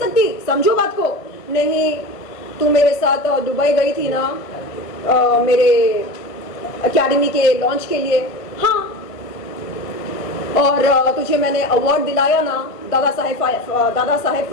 समझो बात को। नहीं, तू मेरे साथ दुबई गई थी ना मेरे एकेडमी के लॉन्च के लिए। हाँ, और तुझे मैंने अवार्ड दिलाया ना, दादा साहेब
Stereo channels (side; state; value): right; late; 1.5 ms